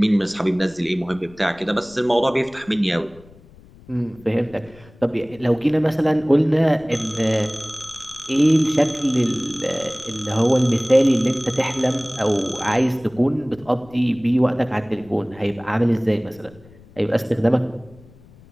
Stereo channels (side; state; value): left; noise; rumble, 24 dB below the sound